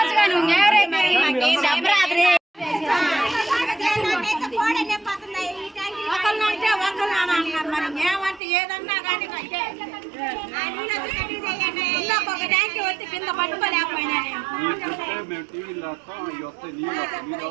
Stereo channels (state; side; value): drops out; left; at 8.4 s